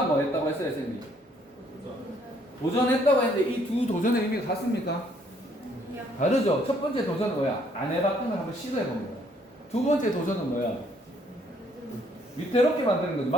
뭐 했다고 했어요, 선생님? 도전했다고 했는데 이 두 도전의 의미가 같습니까? 다르죠? 첫 번째 도전은 뭐야? 안 해봤던 걸 한번 시도해본 거야. 두 번째 도전은 뭐야? 위태롭게 만드는 거죠.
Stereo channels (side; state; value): both; normal; correlation 0.66